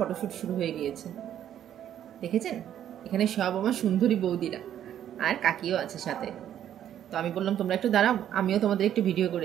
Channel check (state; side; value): quieter; left; 10.6 dB